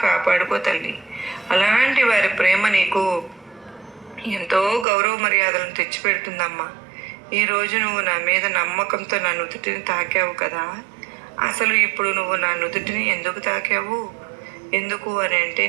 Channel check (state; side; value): drops out; left; at 4.9 s